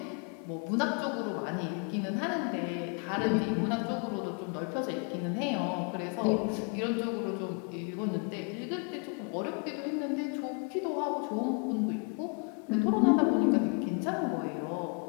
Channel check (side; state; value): right; quieter; 35.2 dB